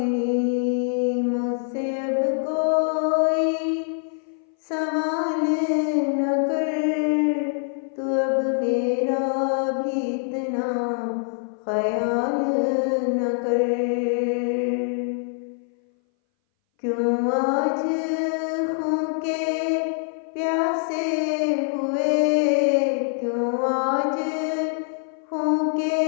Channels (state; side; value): silent; right; 60 dB below the other